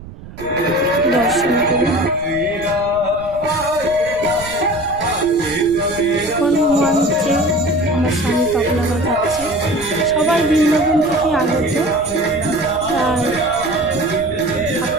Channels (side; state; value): right; noise; rumble, 15 dB below the sound